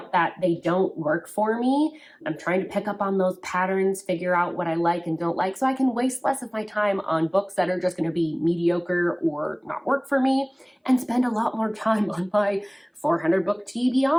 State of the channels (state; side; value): identical; both; correlation 1.00